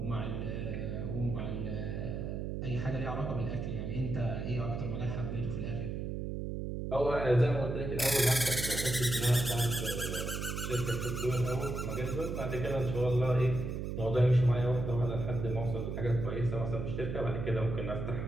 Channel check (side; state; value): right; noise; hum, 3 dB below the sound